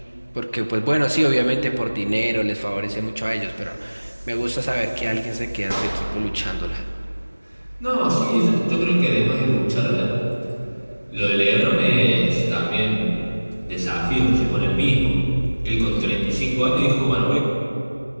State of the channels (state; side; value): inverted; both; correlation -1.00